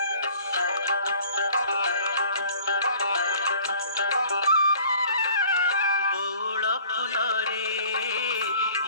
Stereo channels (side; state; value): both; inverted; correlation -0.50